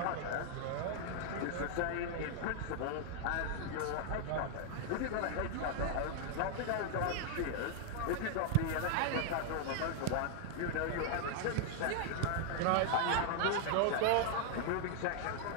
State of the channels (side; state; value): both; different; correlation 0.00